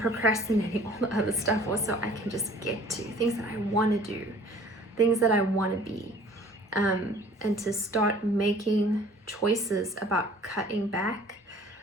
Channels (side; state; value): both; normal; correlation 0.51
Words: all the other stuff also I can just get to, things that I want to do, things that I want to be, and to start making choices about cutting back,